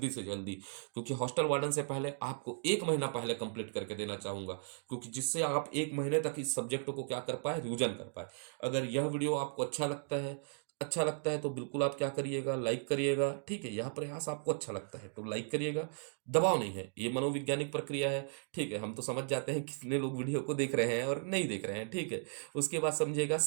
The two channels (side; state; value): left; silent; digital silence